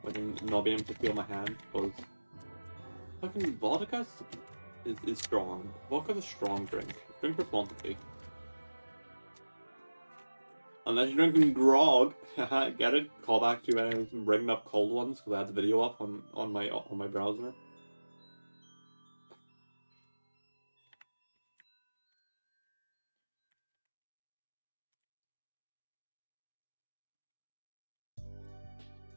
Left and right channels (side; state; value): both; inverted; correlation -1.00